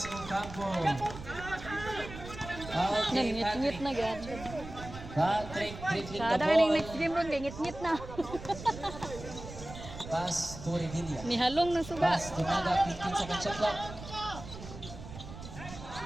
Ocampo. Okay, Ngit-ngit na gad. Patrick dribbling the Sada kaning ball. next game ron kay ngit-ngit na. Pass to Revilla. Nihalong ng suga. Pass to Naga. 15 second shot clock.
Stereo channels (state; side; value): noise; right; rumble, 12 dB below the sound